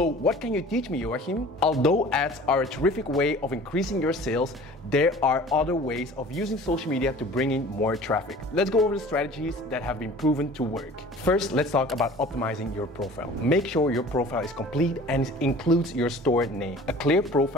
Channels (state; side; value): normal; both; correlation 0.45